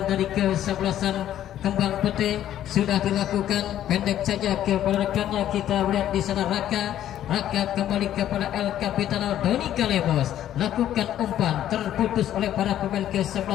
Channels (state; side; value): quieter; right; 11.6 dB